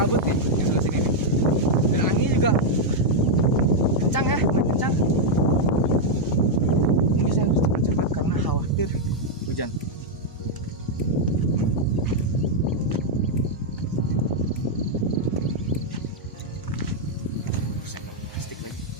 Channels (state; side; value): normal; both; correlation -0.02